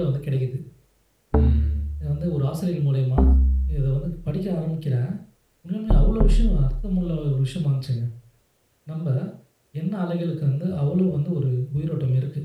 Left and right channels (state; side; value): identical; both; correlation 1.00